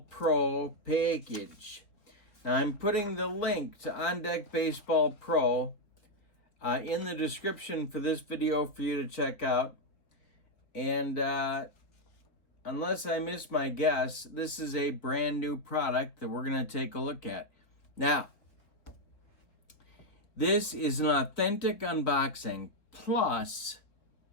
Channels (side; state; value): right; late; 3.7 ms